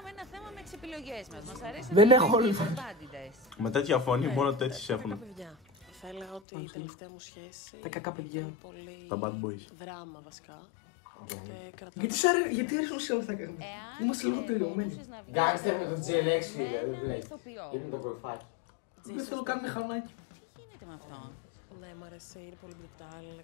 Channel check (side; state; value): right; drops out; at 6.4 s